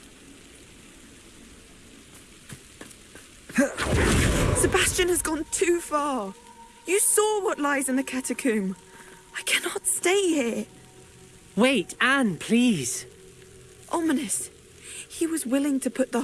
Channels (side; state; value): both; identical; correlation 1.00